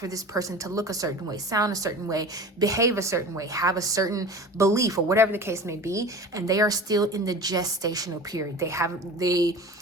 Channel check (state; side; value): normal; both; correlation 0.37